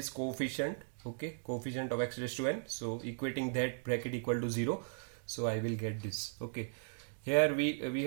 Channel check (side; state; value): left; silent; digital silence